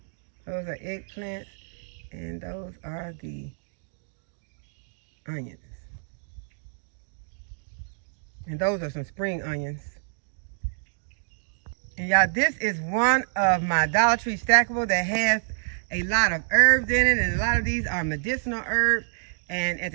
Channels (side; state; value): left; silent; digital silence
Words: Those are eggplants, and those are the onions. And those are some spring onions. And y'all, this is one of my Dollar Tree stackable that has a lot of herbs in it, and a lot of these are medicinal herbs. And at